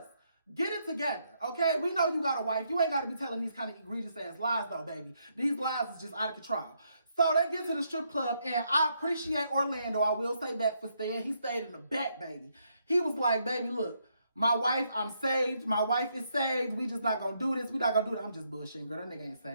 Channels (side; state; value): both; inverted; correlation -0.76